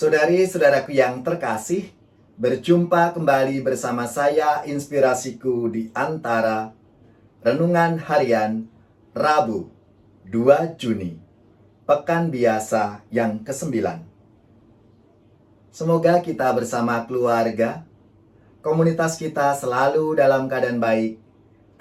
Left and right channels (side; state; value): both; identical; correlation 1.00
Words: yang terkasih, berjumpa kembali bersama saya Inspirasiku di Antara Renungan Harian Rabu 2 Juni, Pekan Biasa yang ke-9. Semoga kita bersama keluarga, komunitas kita selalu dalam keadaan baik,